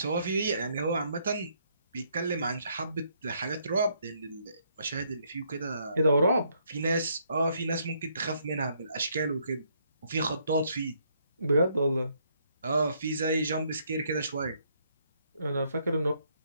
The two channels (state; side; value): inverted; both; correlation -0.71